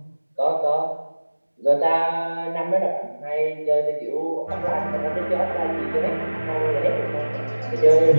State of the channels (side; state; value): both; inverted; correlation -1.00